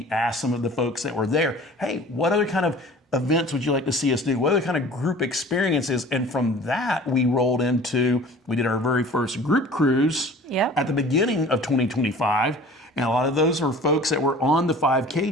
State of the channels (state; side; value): normal; both; correlation 0.45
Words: asked some of the folks that were there, hey, what other kind of events would you like to see us do? What other kind of group experiences? And from that, we did our very first group cruise at the beginning of 2025. And a lot of those are folks that were on the